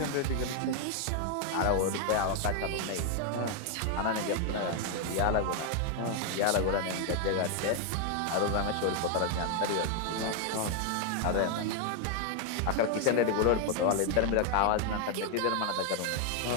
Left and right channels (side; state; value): both; different; correlation 0.01